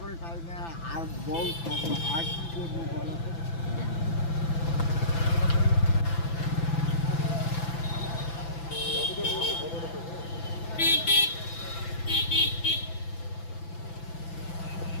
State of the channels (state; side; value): late; right; 6.0 ms